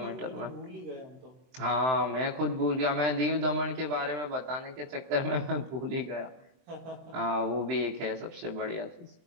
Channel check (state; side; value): late; left; 23 ms